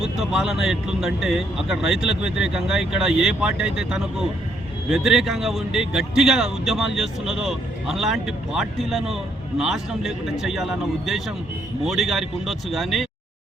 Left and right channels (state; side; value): normal; both; correlation 0.72